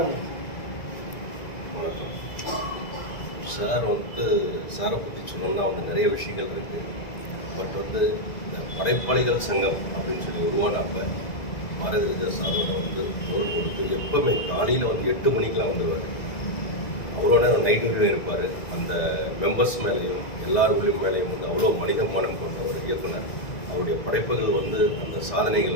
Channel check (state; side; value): late; right; 2.0 ms